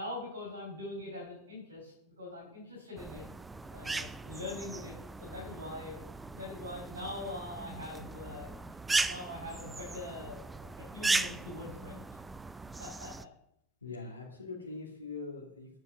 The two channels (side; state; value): both; normal; correlation 0.60